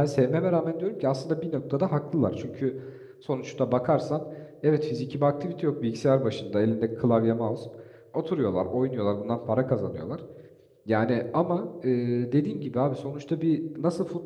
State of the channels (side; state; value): both; identical; correlation 1.00